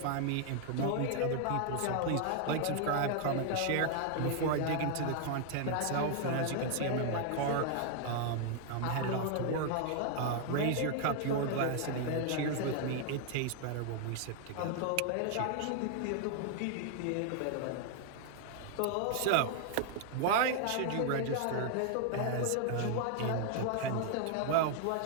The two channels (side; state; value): both; different; correlation 0.00